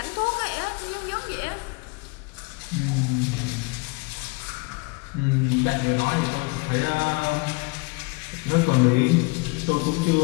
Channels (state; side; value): quieter; right; 28.9 dB